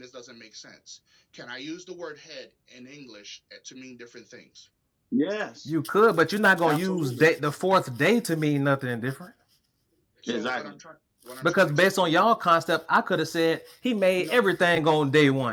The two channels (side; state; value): both; identical; correlation 1.00